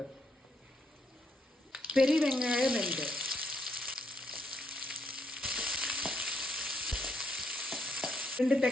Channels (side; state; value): both; normal; correlation 0.77